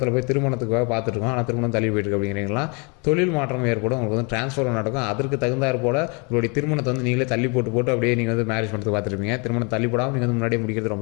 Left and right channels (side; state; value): right; quieter; 33.0 dB